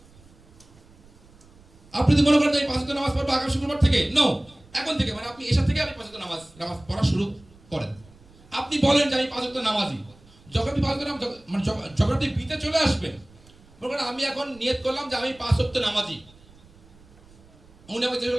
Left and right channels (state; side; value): noise; right; rumble, 26 dB below the sound